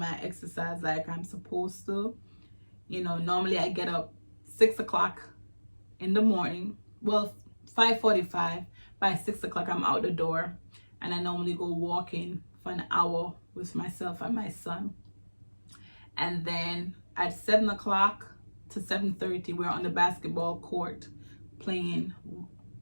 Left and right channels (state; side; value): inverted; both; correlation -1.00